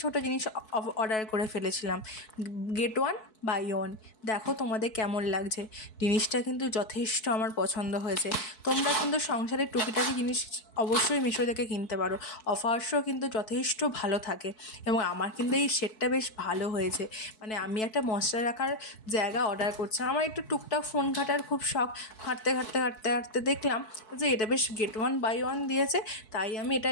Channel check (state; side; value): late; right; 4.6 ms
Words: ছোটো জিনিস অর্ডার করে ফেলেছিলাম। Get one buy one. দেখো তোমাদের কেমন লাগছে। জিনিসটা কিন্তু যথেষ্ট আমার পছন্দ হয়েছে। তোমরা কিন্তু সংসারের টুকিটাকি জিনিস অবশ্যই মিশো থেকে কিনতে পারো। অফার্সও কিন্তু যথেষ্ট ভালো থাকে এবং আমার কিন্তু এই সেটটা বেশ ভালো হয়েছে। মানে আমি একটা মশলা রাখার জায়গা অর্ডার করছিলাম। আমার একটু টুকটাক ফোন ঘাটার খুব শখ। ঘাঁটতে দেখলাম যে এটা বেশ গেট ওয়ান বাই ওয়ান দিয়েছে, তাই আমি এটা